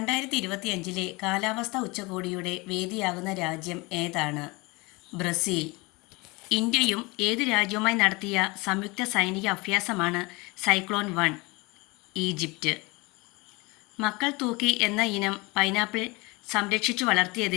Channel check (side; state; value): right; quieter; 25.2 dB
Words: കാലാവസ്ഥാ ഉച്ചകോടിയുടെ വേദിയാകുന്ന രാജ്യം ഏതാണ്? ബ്രസീൽ. ഇന്ത്യയും ഏത് രാജ്യവുമായി നടത്തിയ സംയുക്ത സൈനിക അഭ്യാസമാണ് സൈക്ലോൺ 1? ഈജിപ്റ്റ്. മക്കൾ തൂക്കി എന്ന ഇനം പൈനാപ്പിൾ സംരക്ഷിച്ചു